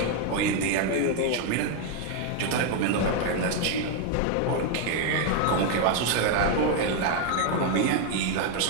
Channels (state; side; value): different; both; correlation 0.01